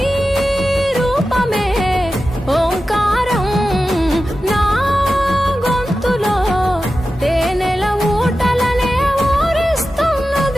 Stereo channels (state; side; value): normal; both; correlation 0.93